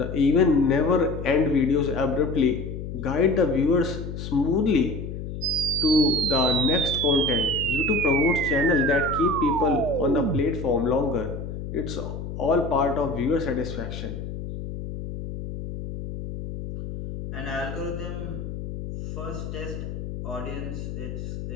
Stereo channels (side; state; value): left; noise; hum, 7 dB below the sound